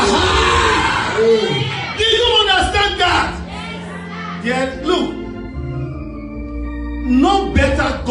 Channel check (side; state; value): both; identical; correlation 1.00